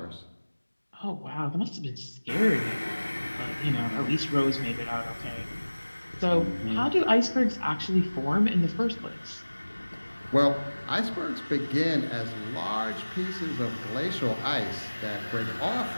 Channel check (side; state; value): both; inverted; correlation -1.00